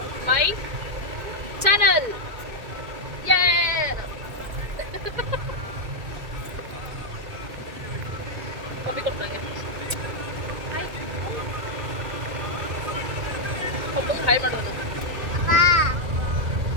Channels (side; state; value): left; late; 2.1 ms